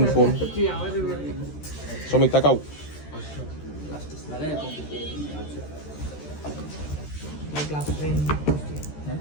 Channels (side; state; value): right; late; 13 ms